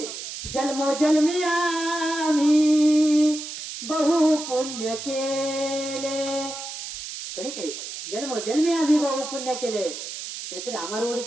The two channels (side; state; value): right; noise; hiss, 9 dB below the sound